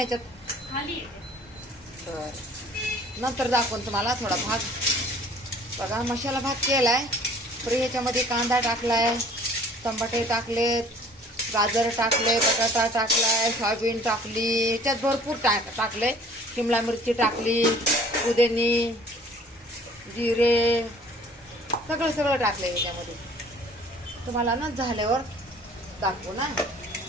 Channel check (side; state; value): both; normal; correlation 0.52